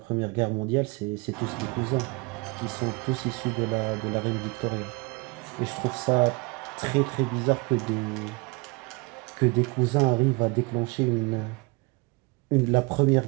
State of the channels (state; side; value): quieter; left; 27.7 dB